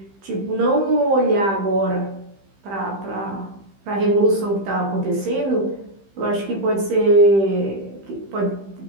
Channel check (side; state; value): left; late; 15 ms